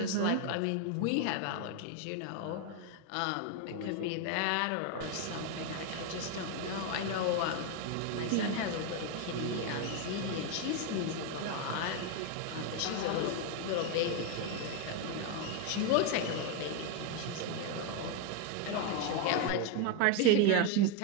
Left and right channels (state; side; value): different; both; correlation 0.02